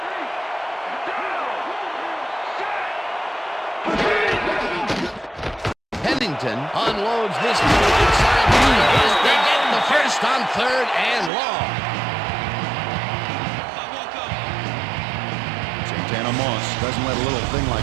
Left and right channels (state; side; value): drops out; left; at 11.3 s